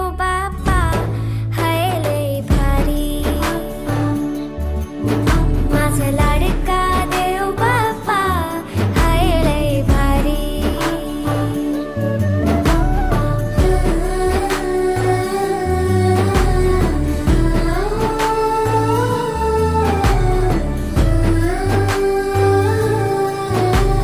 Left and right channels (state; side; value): identical; both; correlation 1.00